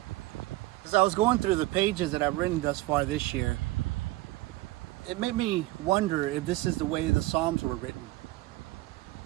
As I was going through the pages that I've written thus far this year, it made me wonder if this is the way the Psalms were written.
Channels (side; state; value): left; quieter; 18.9 dB